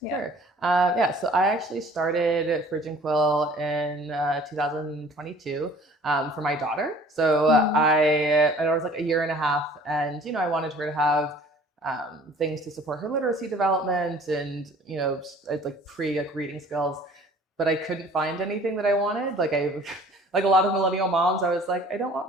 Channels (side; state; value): both; normal; correlation 0.51